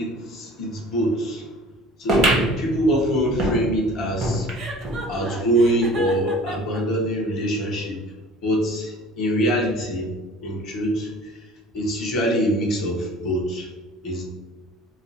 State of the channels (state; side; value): normal; both; correlation 0.46